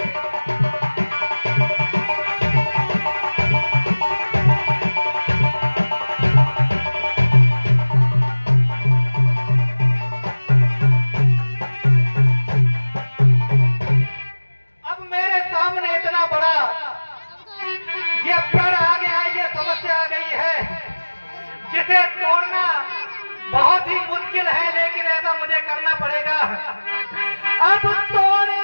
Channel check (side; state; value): both; inverted; correlation -1.00